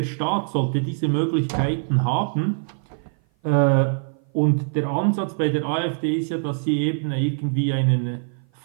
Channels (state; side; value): silent; left; 56 dB below the other